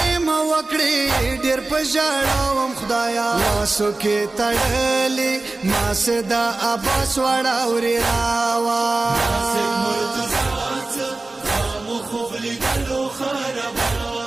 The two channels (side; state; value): left; quieter; 3.2 dB